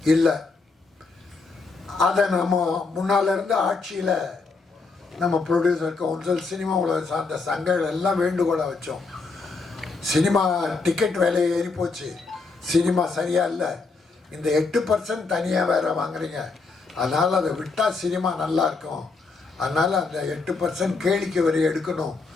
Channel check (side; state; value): right; quieter; 4.1 dB